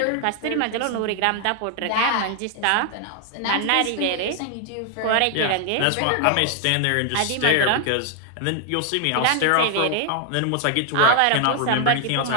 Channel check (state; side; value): different; both; correlation 0.00